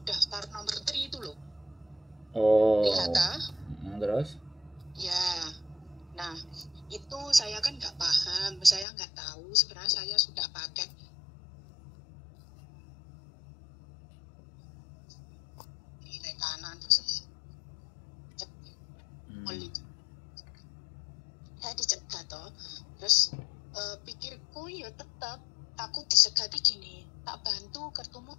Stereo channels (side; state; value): right; drops out; at 8.8 s